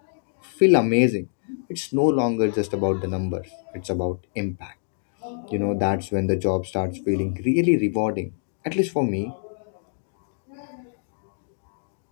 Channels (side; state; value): right; silent; digital silence